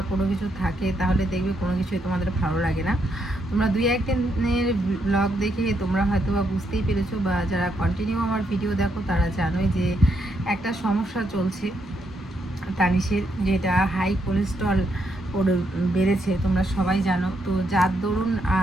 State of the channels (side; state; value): both; normal; correlation 0.78